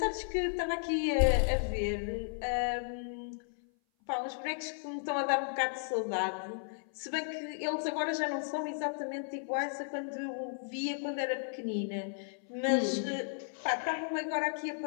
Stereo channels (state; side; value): silent; right; 55 dB below the other